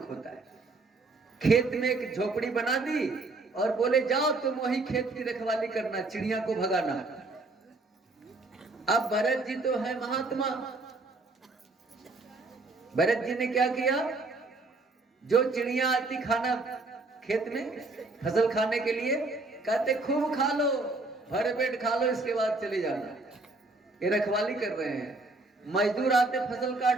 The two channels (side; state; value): left; quieter; 3.3 dB